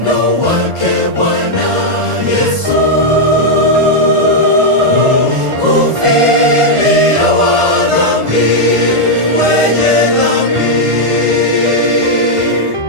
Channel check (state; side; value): late; left; 1.5 ms